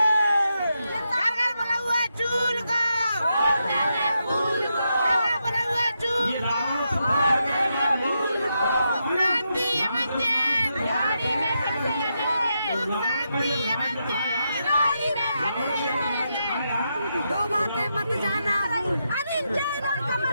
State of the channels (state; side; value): inverted; both; correlation -0.84